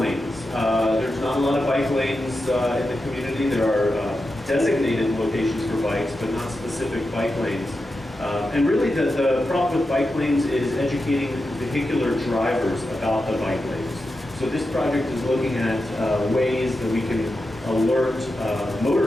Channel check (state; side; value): normal; both; correlation 0.89